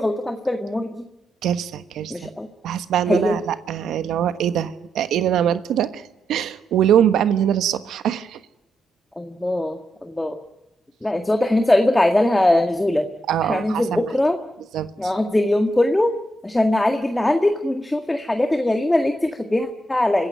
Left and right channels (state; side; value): normal; both; correlation 0.83